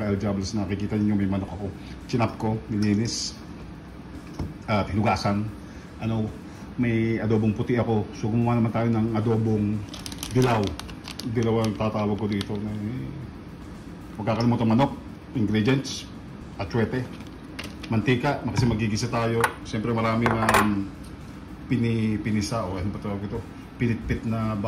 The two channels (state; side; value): identical; both; correlation 1.00